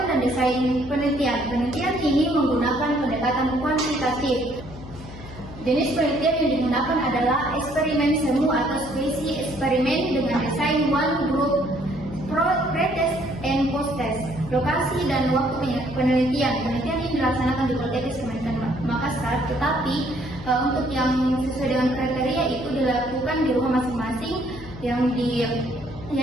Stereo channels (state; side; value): noise; left; hum, 15 dB below the sound